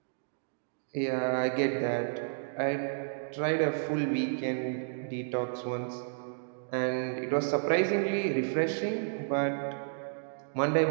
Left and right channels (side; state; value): left; silent; digital silence